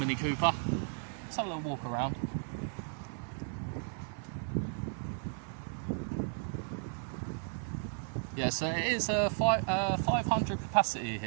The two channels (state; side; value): silent; left; 55 dB below the other